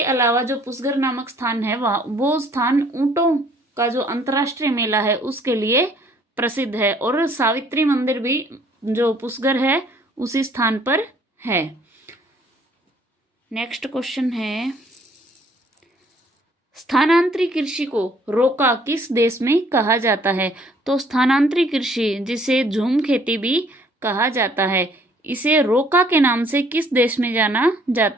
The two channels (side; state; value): both; normal; correlation 0.60